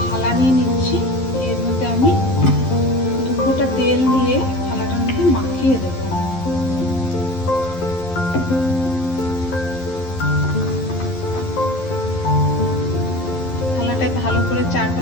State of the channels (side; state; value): right; late; 11 ms